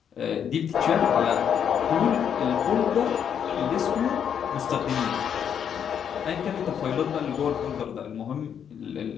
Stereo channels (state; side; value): quieter; right; 8.3 dB